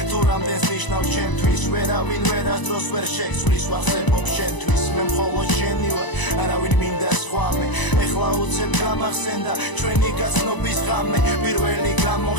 თუ რამდენს ნიშნავს ჩემთვის ვერავინ ვერასდროს ვერ შეცვლის ვახსენებ შენთვის მე მხოლოდ შენი ვარ არავინ მინდა სხვა მე ეხლა უცებ გამახსენდა ჩვენი გაცნობის ღამე პირველი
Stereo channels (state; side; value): late; right; 1.0 ms